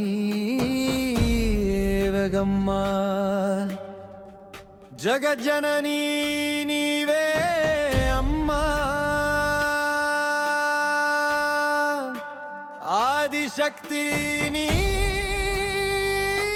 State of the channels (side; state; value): both; identical; correlation 1.00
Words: వేగమ్మ జగజ్జననీ నీవే అమ్మా ఆదిశక్తి నీవే